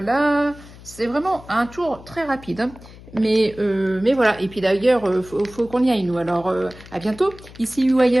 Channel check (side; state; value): left; noise; hum, 19 dB below the sound